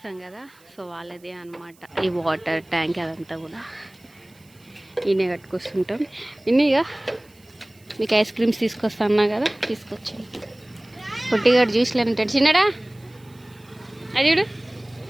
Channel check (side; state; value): right; noise; hiss, 30 dB below the sound